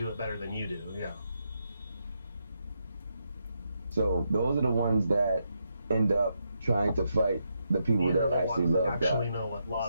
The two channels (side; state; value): both; inverted; correlation -0.82